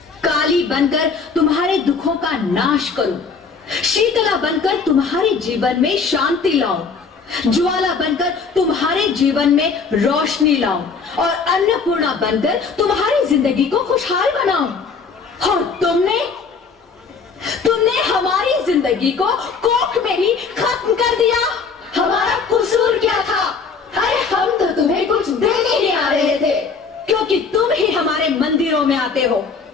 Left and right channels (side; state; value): right; quieter; 5.1 dB